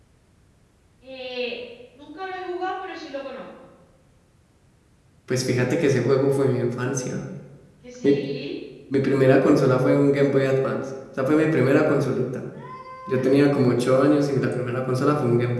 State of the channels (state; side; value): identical; both; correlation 1.00